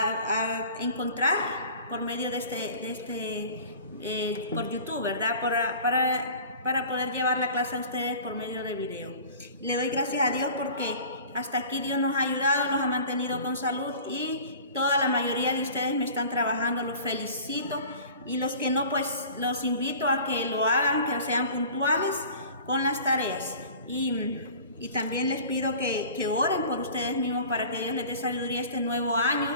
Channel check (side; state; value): both; inverted; correlation -0.42